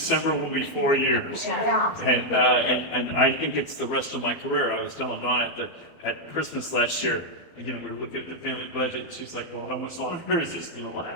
will be 4 years. And I think it's the rest of my career. I was telling Dawn at Christmas last year, we were looking at the family budget, and she's like, well, how much longer is this going to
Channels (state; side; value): late; right; 12 ms